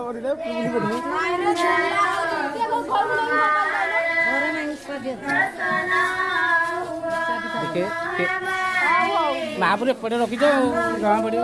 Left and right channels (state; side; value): noise; left; rumble, 29 dB below the sound